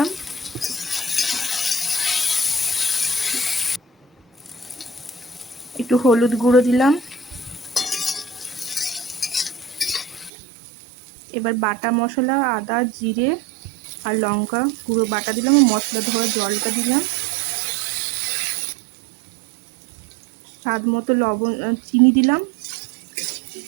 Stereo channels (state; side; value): drops out; left; at 10.3 s